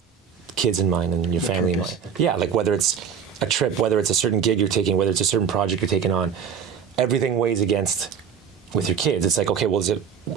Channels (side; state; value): left; quieter; 7.4 dB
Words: kids in mind and your family in mind. Yeah, like whether it's a trip, whether it's a certain gig you're taking, whether it's a certain project you're taking on, everything weighs against with your kids. It's like, okay, well, is